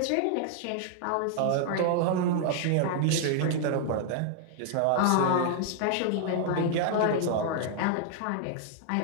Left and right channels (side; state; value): both; different; correlation 0.00